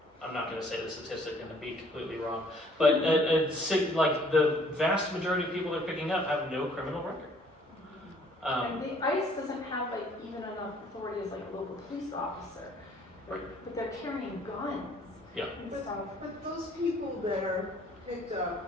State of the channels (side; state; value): both; normal; correlation 0.59